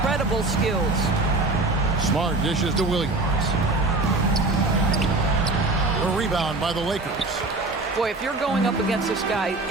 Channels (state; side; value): quieter; left; 3.1 dB